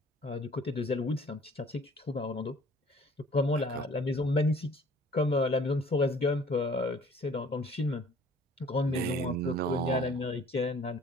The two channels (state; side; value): normal; both; correlation 0.53